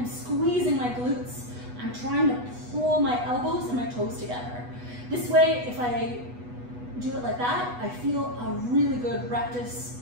squeezing my glutes. I'm trying to pull my elbows and my toes together. This way, if I do it like that, I feel a really good rectus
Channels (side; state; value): left; late; 8.2 ms